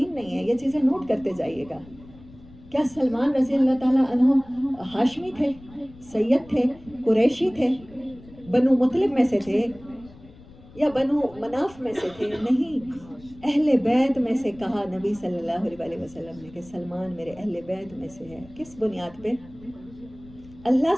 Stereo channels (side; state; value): left; noise; rumble, 22 dB below the sound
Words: نہیں ہے، یہ چیزیں نوٹ کرتے جائیے گا. کیا سلمان رضی اللہ تعالیٰ عنہ ہاشمی تھے، سید تھے، قریشی تھے، بنو مطلب میں سے تھے یا بنو مناف میں سے تھے؟ نہیں، اہل بیت میں سے کہا نبی صلی اللہ علیہ وسلم نے کہ سلمان میرے اہل بیت میں سے ہے. کس بنیاد پہ؟ اللہ